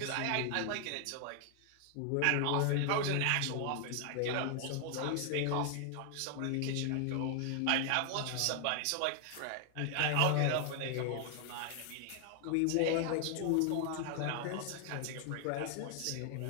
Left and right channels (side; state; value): both; different; correlation 0.00